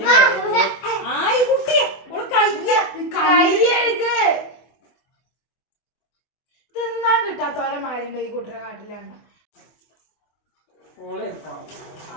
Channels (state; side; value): late; right; 24 ms